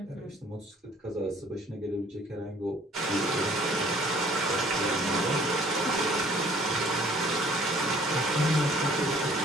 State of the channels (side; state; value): both; normal; correlation 0.57